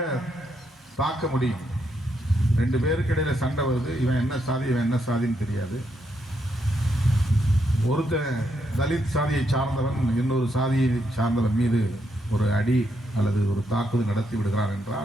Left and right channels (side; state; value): both; normal; correlation 0.79